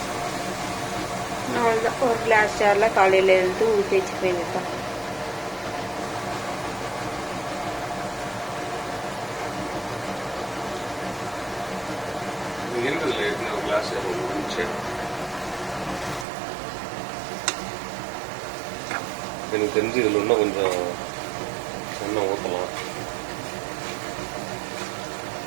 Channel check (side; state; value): left; drops out; at 16.2 s